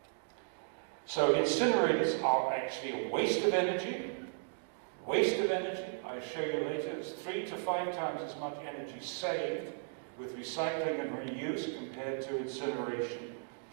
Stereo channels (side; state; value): left; silent; digital silence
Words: So incinerators are actually a waste of energy. Waste of energy, I'll show you later, it's 3 to 5 times as much energy saved with recycling and reuse compared to incineration.